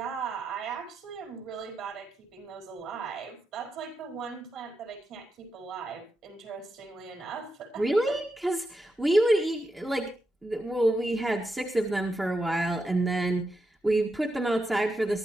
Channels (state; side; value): normal; both; correlation 0.86